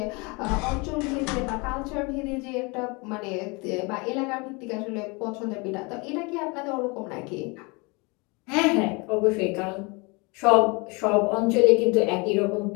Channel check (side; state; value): right; quieter; 28.4 dB